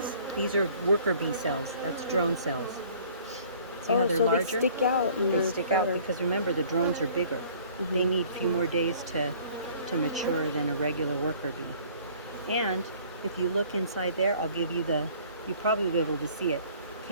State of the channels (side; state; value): both; inverted; correlation -0.54